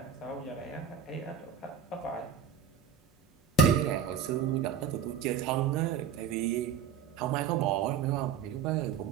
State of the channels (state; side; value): quieter; left; 7.2 dB